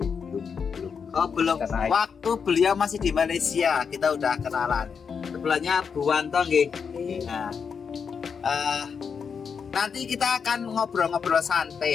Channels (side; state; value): right; quieter; 6.3 dB